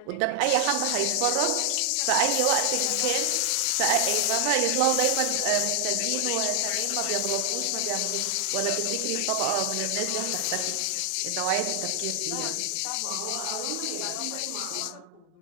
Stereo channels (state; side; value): different; both; correlation 0.00